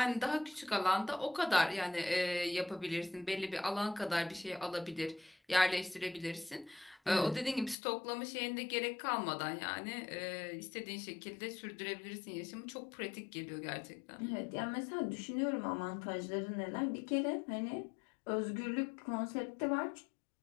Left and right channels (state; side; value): drops out; right; at 7.8 s